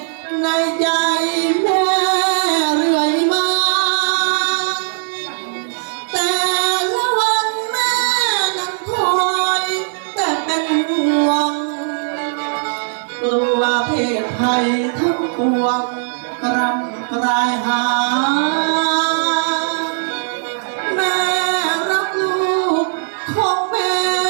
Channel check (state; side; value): silent; left; digital silence